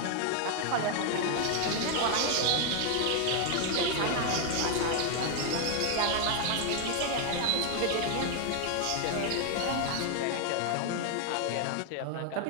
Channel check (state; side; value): different; both; correlation 0.00